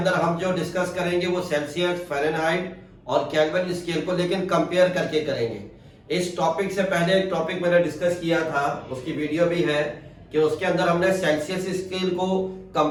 हम जो डिस्कस करेंगे वो सेल्सियस, फ़ारेनहाइट और केल्विन स्केल को लेकिन कंपेयर करके करेंगे। इस टॉपिक से पहले एक टॉपिक मैंने डिस्कस किया था, उसकी वीडियो भी है कि उसके अंदर हमने सेल्सियस स्केल को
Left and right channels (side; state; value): both; identical; correlation 1.00